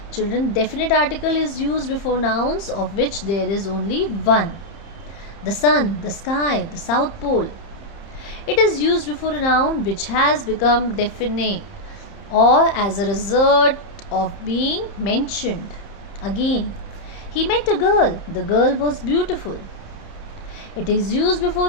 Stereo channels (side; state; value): right; late; 30 ms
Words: Children, definite article is used before nouns of which there is only one. The sun, the sky, the south pole. It is used before a noun which has become definite or as a result of being mentioned. Again, he met a girl. The girl was beautiful. It is used